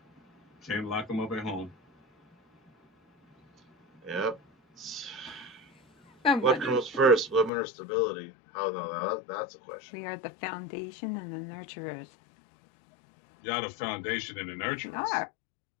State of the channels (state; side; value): drops out; right; at 7.5 s